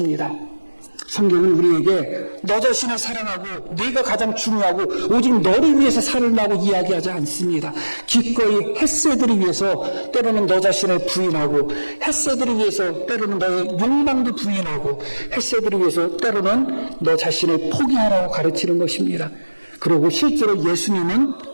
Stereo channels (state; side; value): inverted; both; correlation -1.00